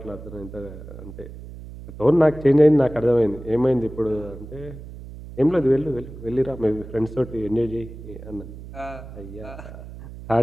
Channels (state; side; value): noise; right; hum, 14 dB below the sound